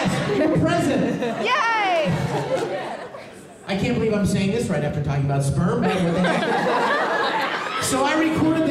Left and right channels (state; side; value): identical; both; correlation 1.00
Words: you're present. Yay! I can't believe I'm saying this right after talking about sperm, but what the heck? So I recorded